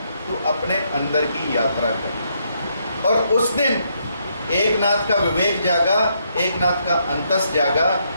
तू अपने अंदर की यात्रा कर। और उस दिन एकनाथ का विवेक जागा, एकनाथ का अंतस जागा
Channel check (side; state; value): both; inverted; correlation -0.75